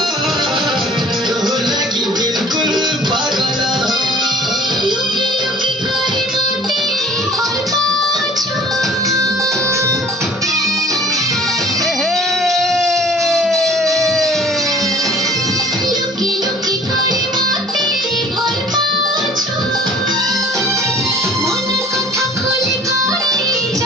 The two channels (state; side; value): normal; both; correlation 0.50